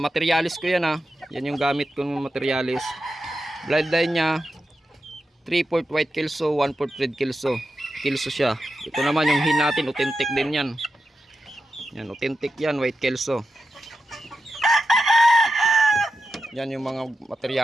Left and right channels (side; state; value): both; normal; correlation 0.89